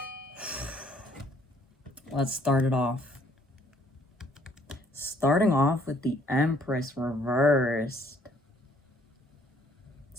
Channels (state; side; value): normal; both; correlation 0.63